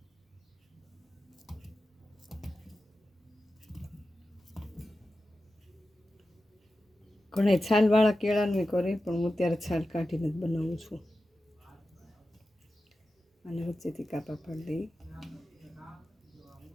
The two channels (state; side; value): normal; both; correlation 0.92